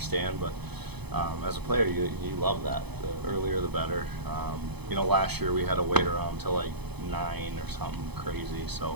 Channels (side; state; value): left; late; 0.98 ms